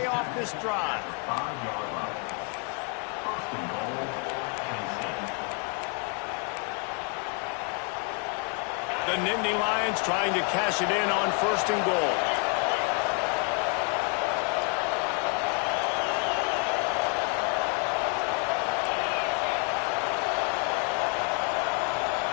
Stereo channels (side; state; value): right; quieter; 36.3 dB